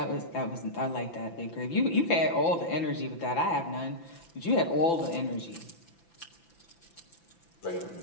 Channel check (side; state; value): right; late; 5.9 ms